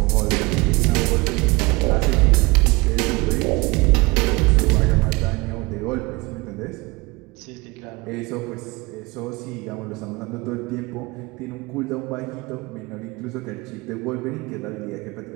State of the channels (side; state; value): left; quieter; 24.5 dB